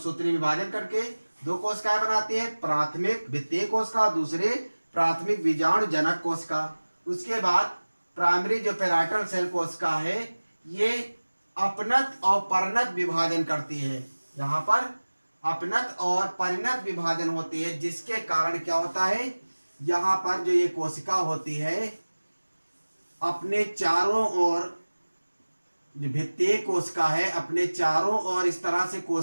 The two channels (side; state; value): both; inverted; correlation -1.00